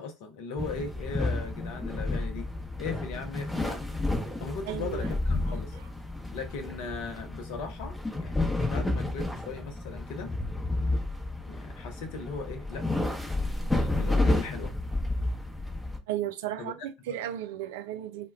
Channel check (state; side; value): normal; both; correlation 0.78